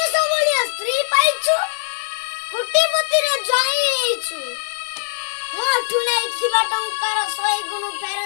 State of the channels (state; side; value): silent; right; 57 dB below the other